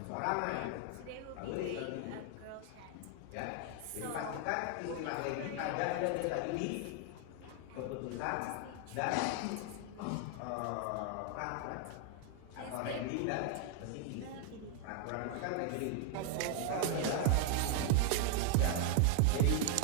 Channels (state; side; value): different; both; correlation 0.00